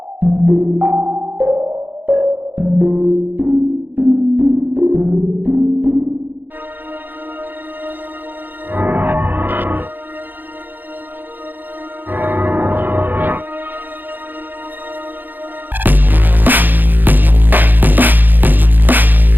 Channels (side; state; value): left; late; 0.089 ms